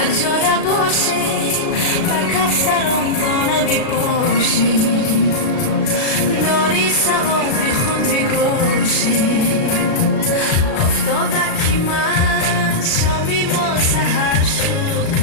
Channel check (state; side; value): late; right; 36 ms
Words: جای باشیم بر کفترم دانه بپاشیم داری سوابی خود بگوشیم افتادکی من شامی ما سهر شد